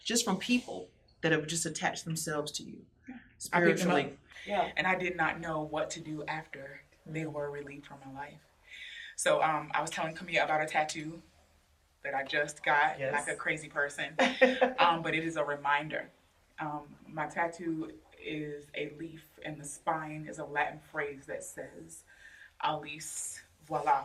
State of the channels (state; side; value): identical; both; correlation 1.00